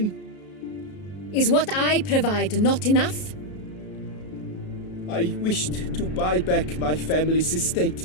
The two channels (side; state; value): right; late; 33 ms